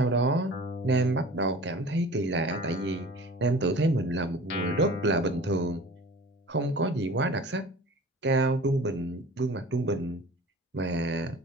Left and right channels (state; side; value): normal; both; correlation 0.42